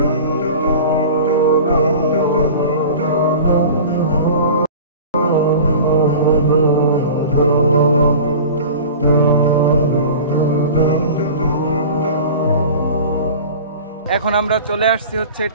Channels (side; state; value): both; inverted; correlation -0.39